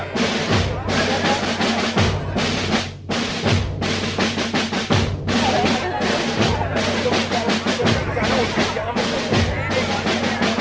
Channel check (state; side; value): identical; both; correlation 1.00